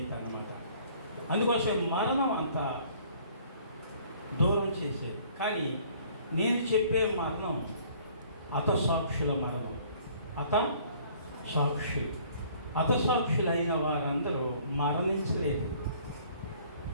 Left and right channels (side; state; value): both; inverted; correlation -0.56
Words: అన్నమాట. అందుకోసం మరణం అంత దూరం చేసేది. కానీ నేను చెప్పే మరణం హతసాక్షుల మరణం. హతసాక్షులైన వారందరూ మరణించలేదు.